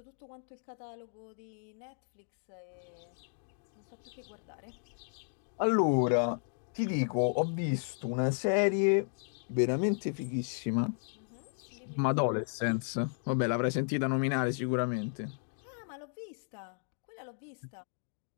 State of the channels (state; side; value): silent; right; digital silence